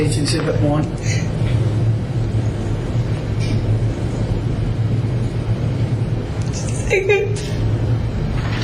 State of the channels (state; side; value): identical; both; correlation 1.00